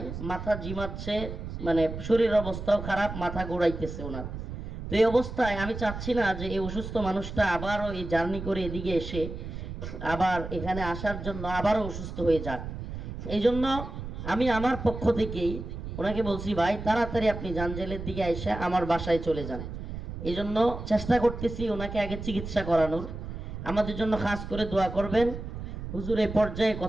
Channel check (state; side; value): noise; right; rumble, 8 dB below the sound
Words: মাথা জিমাচ্ছে, মানে শরীরের অবস্থাও খারাপ, মাথা ঘোরাইতেছে ওনার। তো এই অবস্থায় আমি চাচ্ছি না যে এই অসুস্থ মানুষটা আবারও এই জার্নি করে এদিকে এসে আবার এখানে আসার জন্য আবারও অসুস্থ হয়ে যাক। এই জন্য আমি আমার পক্ষ থেকেই ওনাকে বলছি, ভাই তাড়াতাড়ি আপনি জাঞ্জেলের দিকে এসে আমার বাসায় চলে যান। এই জন্য চেষ্টা করতেছি ওনাকে আগে চিকিৎসা করানোর। আমাদের জন্য খাস করে দোয়া করবেন। হুজুর এই পর্যায়ে